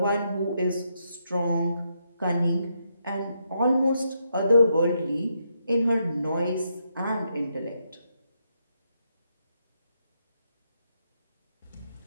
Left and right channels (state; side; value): inverted; both; correlation -0.80